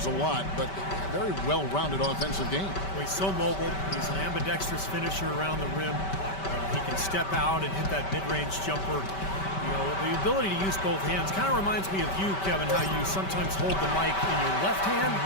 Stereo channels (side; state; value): right; late; 5.2 ms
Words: a lot, but a very well-rounded offensive game. Well, he's so mobile. He's an ambidextrous finisher around the rim. He can step out and hit that mid-range jumper. You know, the ability to use both hands kind of reminds me of you, Kevin, how you sometimes hold the mic in your left hand,